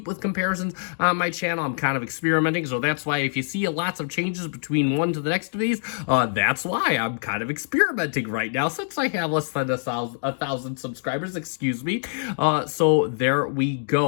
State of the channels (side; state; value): right; silent; digital silence